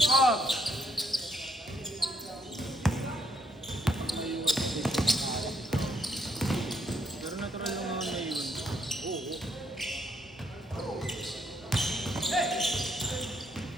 Pero natural lang naman na yun.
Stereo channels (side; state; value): both; normal; correlation 0.73